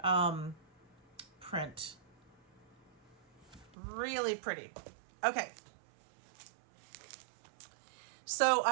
print. Really pretty. Okay. So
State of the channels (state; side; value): drops out; left; at 3.7 s